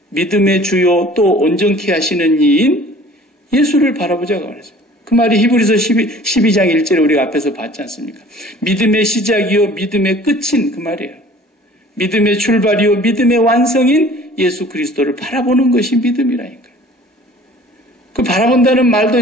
믿음의 주요 또 온전케 하시는 이인 예수를 바라보자고 그랬어요. 그 말이 히브리서 12장 1절에 우리가 앞에서 봤지 않습니까? 믿음의 시작이요 믿음의 끝인 그 말이에요. 믿음의 출발이요 믿음의 완성인 예수 그리스도를 바라보는 것이 믿음이라니까요. 그 바라본다는 말도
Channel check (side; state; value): both; normal; correlation 0.49